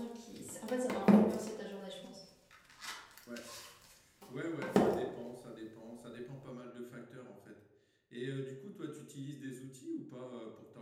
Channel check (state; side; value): identical; both; correlation 1.00